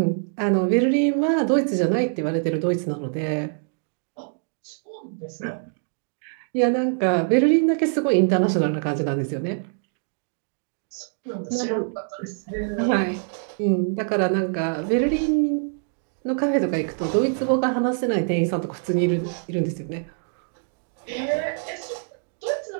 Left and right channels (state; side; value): silent; left; digital silence